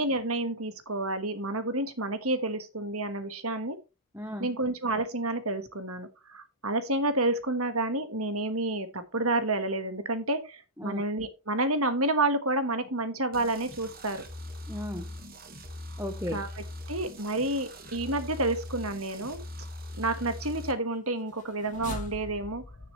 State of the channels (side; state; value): both; normal; correlation -0.13